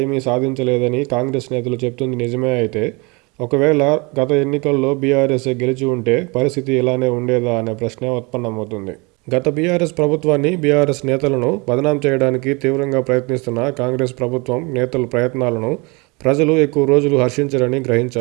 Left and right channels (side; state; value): left; quieter; 28.0 dB